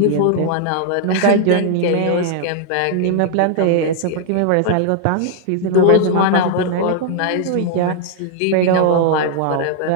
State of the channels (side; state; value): both; different; correlation 0.00